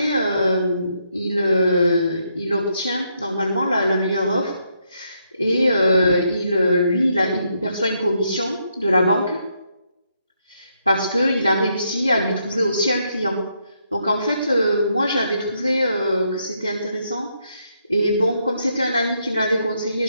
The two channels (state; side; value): inverted; both; correlation -0.77